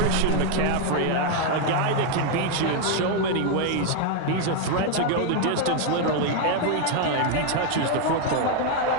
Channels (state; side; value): different; both; correlation 0.01